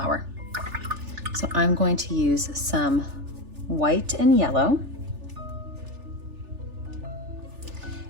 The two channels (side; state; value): left; late; 3.4 ms